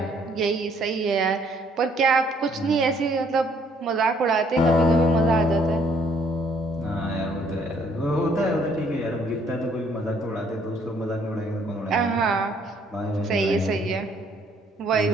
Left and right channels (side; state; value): both; normal; correlation 0.64